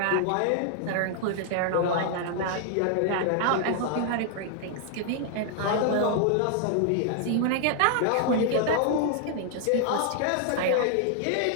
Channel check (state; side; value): different; both; correlation 0.00